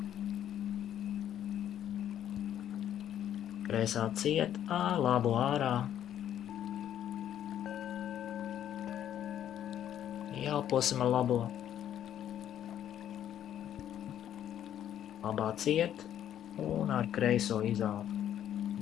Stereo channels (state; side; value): quieter; right; 10.7 dB